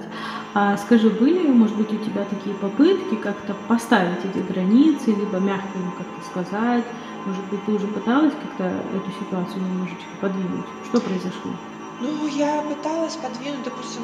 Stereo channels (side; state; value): both; identical; correlation 1.00